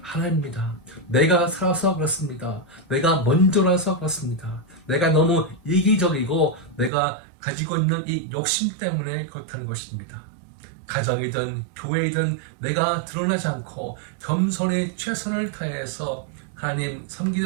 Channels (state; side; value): drops out; left; at 6.9 s